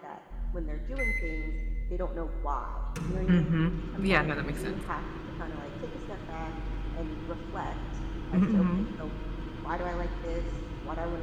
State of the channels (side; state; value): both; identical; correlation 1.00